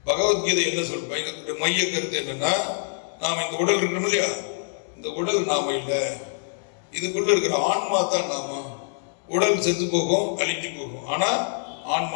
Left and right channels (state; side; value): silent; right; digital silence